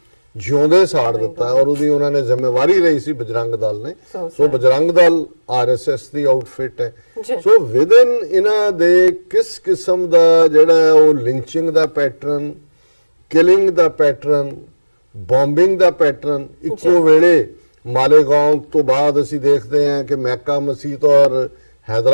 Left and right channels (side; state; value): both; inverted; correlation -1.00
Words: ਜਿਉਂਦੇ ਸਾੜ ਦਿੱਤਾ, ਔਰ ਉਹਦੀ ਉਹਨਾਂ ਨੇ ਜ਼ਿੰਮੇਵਾਰੀ ਲਈ ਸੀ ਬਜਰੰਗ ਦਲ ਨੇ। ਸੋ ਬਜਰੰਗ ਦਲ ਆਰਐਸਐਸ ਦੀ ਆਊਟਫਿਟ ਹੈ। ਸੋ ਵਿਦਨ ਇਹਨਾਂ ਦੇ ਕਿਸ ਕਿਸਮ ਦਾ ਜਿਹੜਾ ਉਹ ਲਿੰਚਿੰਗ ਦਾ ਪੈਟਰਨ, ਕਿਲਿੰਗ ਦਾ ਪੈਟਰਨ, ਬੰਬਿੰਗ ਦਾ ਪੈਟਰਨ, ਇੱਕੋ ਵੇਲੇ ਮਾਲੇਗਾਉਂ ਤੋਂ ਬਾਅਦ ਅਸੀਂ ਦੇਖਦੇ ਹਾਂ ਕਿ ਮੈਕਾ ਮਸਜਿਦ ਔਰ